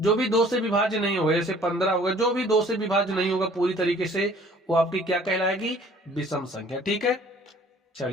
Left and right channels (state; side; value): normal; both; correlation 0.54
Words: भी 2 से विभाज्य नहीं होगा, जैसे 15 हो गया, जो भी 2 से विभाज्य नहीं होगा पूरी तरीके से, वो आपकी क्या कहलाएगी? विषम संख्या। ठीक है,